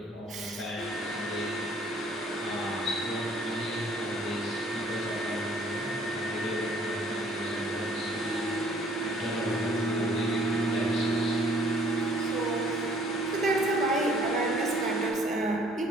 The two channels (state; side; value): normal; both; correlation 0.58